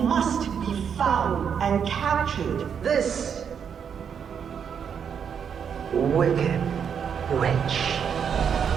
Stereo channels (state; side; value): quieter; left; 7.4 dB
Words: be found and captured. This wicked witch.